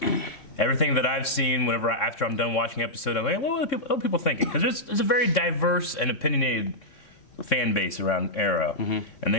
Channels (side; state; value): right; late; 3.6 ms